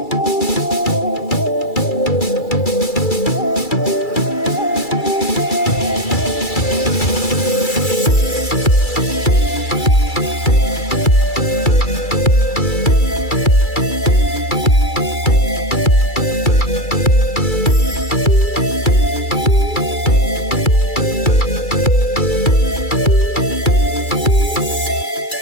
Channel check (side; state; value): right; late; 2.3 ms